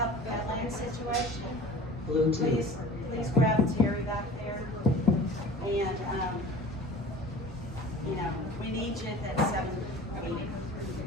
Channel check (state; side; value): normal; both; correlation 0.41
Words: the Badlands situation, please grab Terry back there. And, we need you at that 7 meeting.